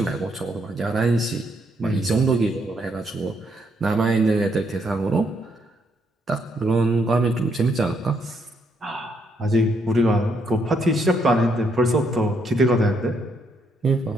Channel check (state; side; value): normal; both; correlation 0.74